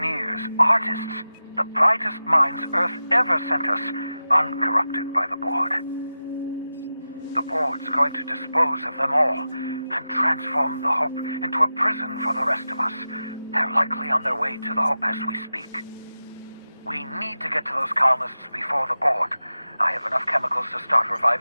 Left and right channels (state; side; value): inverted; both; correlation -0.93